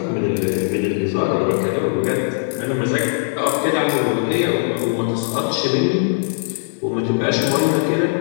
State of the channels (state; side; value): silent; right; 60 dB below the other